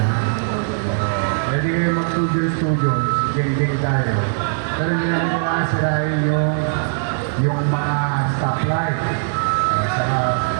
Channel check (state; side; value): silent; left; 65 dB below the other